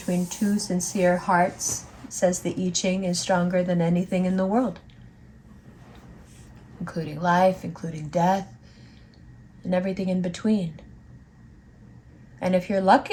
two sincere hearts, says the I Ching, is stronger than anything in the world, including life, including death, and everything in between. And if you're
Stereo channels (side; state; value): both; identical; correlation 1.00